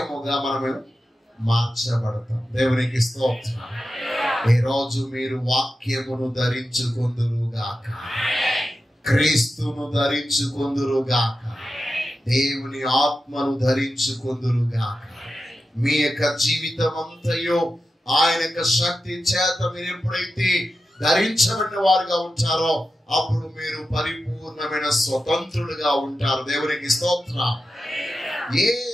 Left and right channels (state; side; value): normal; both; correlation 0.91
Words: మనము మార్చబడతాం. దేవునికి స్తోత్రం. ఈ రోజు మీరు వాక్యమును ధరించుకొందురుగాక, క్రీస్తును ధరించుకొందురుగాక, దేవుని ఆత్మను ధరించుకొందురుగాక. మీ యొక్క జీవితం అంతయో ఆయన యొక్క శక్తి చేత మీరు ఎప్పుడైతే ధరించబడిన వారుగా ఉంటారో అప్పుడు మీరు పరిపూర్ణమైన స్వతంత్రులుగా ఉంటారు. దేవునికి స్తోత్రం. ఏ